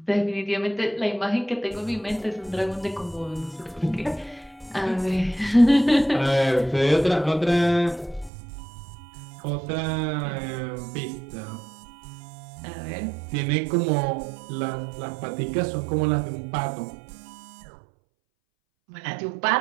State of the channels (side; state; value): left; drops out; at 8.3 s